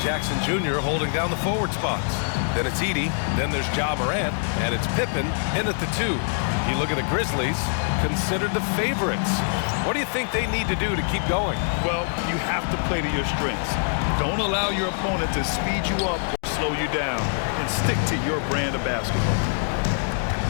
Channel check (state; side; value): silent; right; digital silence